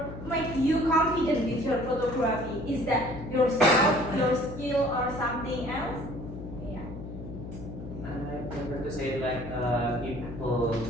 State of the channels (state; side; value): noise; left; hum, 10 dB below the sound